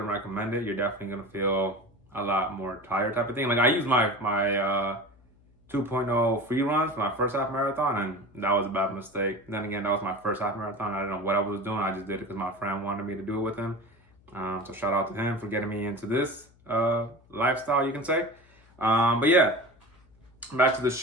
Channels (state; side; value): noise; left; hum, 30 dB below the sound